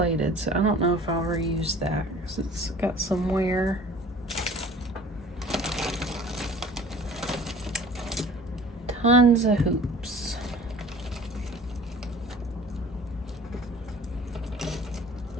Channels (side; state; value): both; normal; correlation 0.47